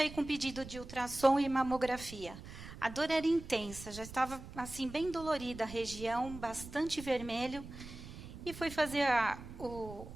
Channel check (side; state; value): right; noise; rumble, 13 dB below the sound